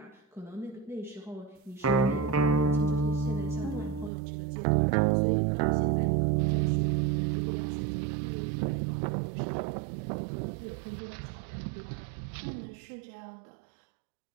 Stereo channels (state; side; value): drops out; left; at 4.1 s